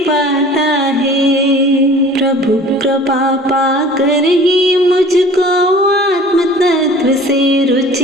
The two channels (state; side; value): normal; both; correlation 0.45